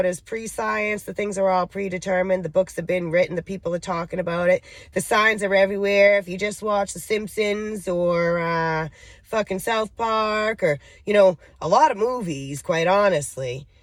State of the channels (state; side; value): identical; both; correlation 1.00